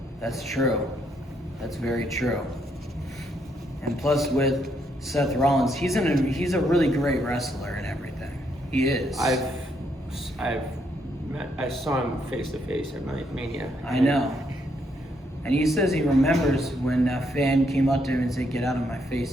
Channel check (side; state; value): both; normal; correlation 0.75